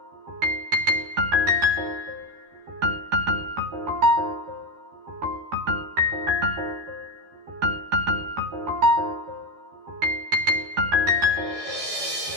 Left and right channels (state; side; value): late; left; 13 ms